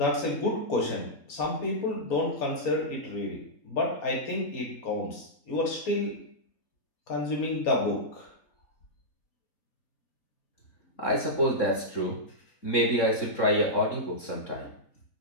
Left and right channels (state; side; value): late; right; 3.7 ms